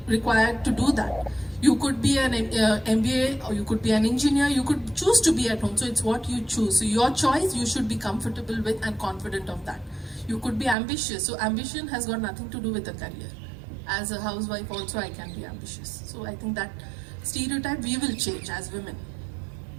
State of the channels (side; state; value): left; drops out; at 10.8 s